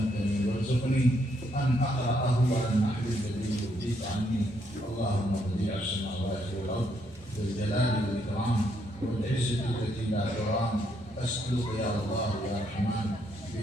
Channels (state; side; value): normal; both; correlation 0.74